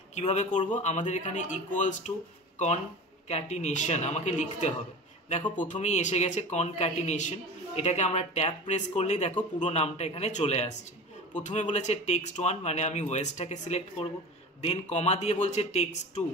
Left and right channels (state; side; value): normal; both; correlation 0.33